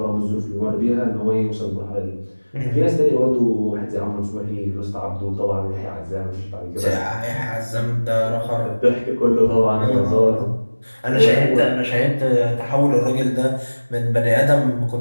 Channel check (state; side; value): inverted; both; correlation -1.00